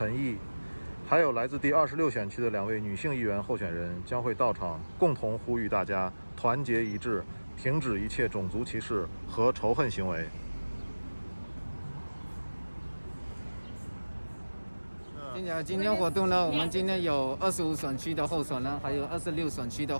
还有来自第26选区的2位女性议员候选人将会到场，共同呼吁大家团结一致，停止一切种族歧视和仇恨行为。今天活动呢，我们今天有25选区的候选人，还有26选区的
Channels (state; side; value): inverted; both; correlation -1.00